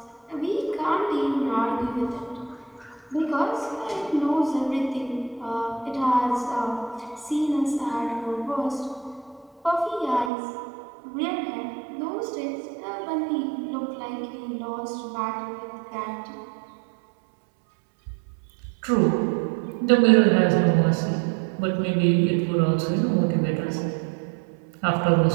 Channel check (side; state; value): left; drops out; at 10.3 s